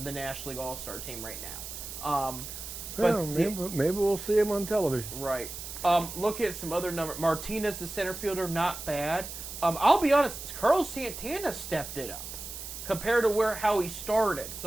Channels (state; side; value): noise; right; hiss, 9 dB below the sound